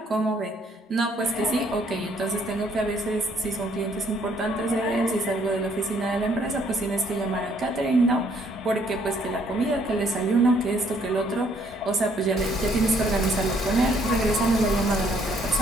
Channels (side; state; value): both; normal; correlation 0.66